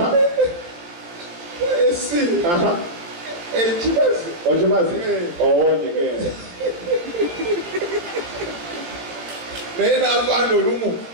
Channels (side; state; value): left; late; 17 ms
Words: C Ochimazi owonyegenda naye n'avaana olumu